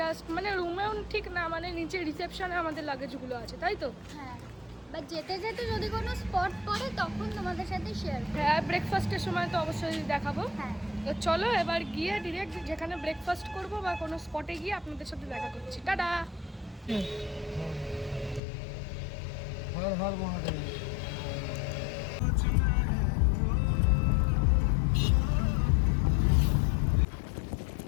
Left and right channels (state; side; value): drops out; right; at 18.4 s